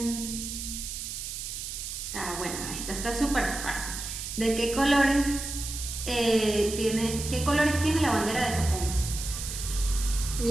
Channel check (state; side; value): noise; right; hiss, 6 dB below the sound